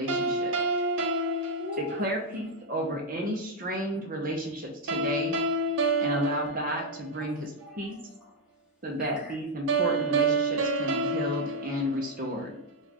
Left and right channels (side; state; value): both; normal; correlation 0.01